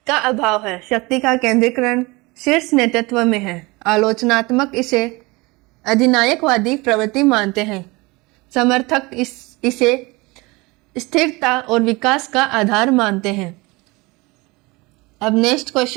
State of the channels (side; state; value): left; quieter; 24.1 dB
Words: का अभाव है। शक्ति का केंद्रीकरण शीर्ष नेतृत्व में है। आलोचनात्मक इसे अधिनायकवादी प्रवृत्ति मानते हैं। समर्थक इसे स्थिरता और विकास का आधार मानते हैं। अब नेक्स्ट